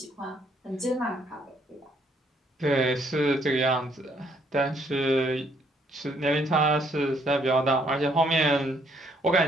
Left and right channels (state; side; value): normal; both; correlation 0.68